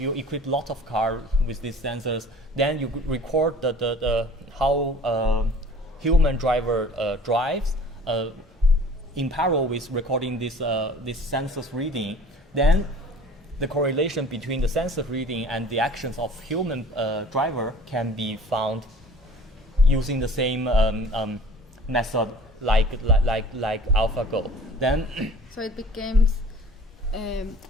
equip lots of cars with these sensors, then you record the how human driver drives in parallel with recording this sensors reading. Then the correlation between the sensor reading and the actions of human driver can be found using the same method like AlphaGo. Then so it becomes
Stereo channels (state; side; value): normal; both; correlation 0.47